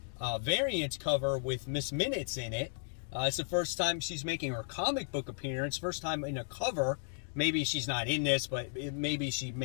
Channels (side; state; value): right; silent; digital silence